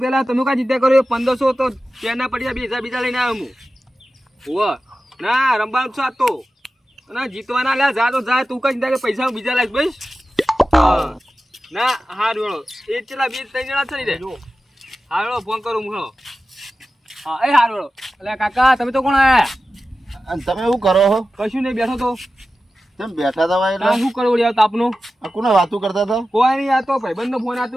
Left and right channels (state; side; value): normal; both; correlation 0.94